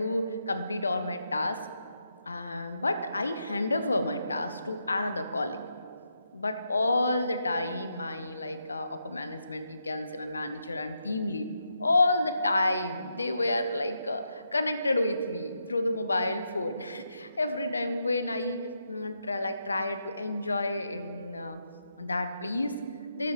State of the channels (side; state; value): both; inverted; correlation -0.82